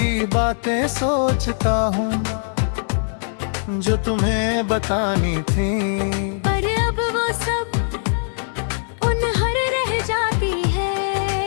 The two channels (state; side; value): silent; right; digital silence